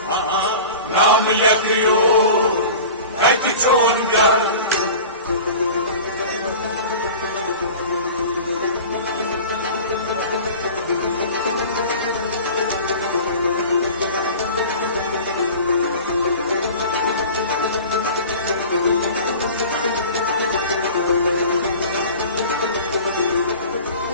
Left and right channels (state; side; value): inverted; both; correlation -0.38